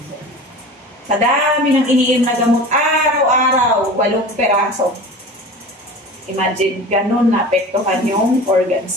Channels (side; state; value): both; normal; correlation 0.36